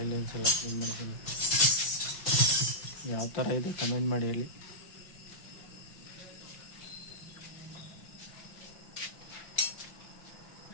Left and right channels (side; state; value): right; late; 5.7 ms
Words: ಲೈನ್ಸ್ ಎಲ್ಲ ಕ್ಲೀನ್ ಮಾಡಿದ್ದೀನಿ ಯಾವ ಥರ ಇದೆ ಕಮೆಂಟ್ ಮಾಡಿ ಹೇಳಿ